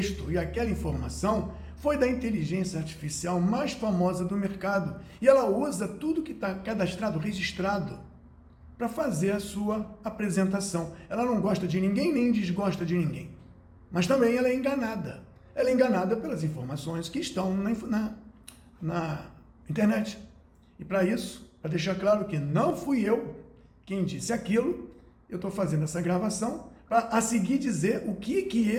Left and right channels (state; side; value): identical; both; correlation 1.00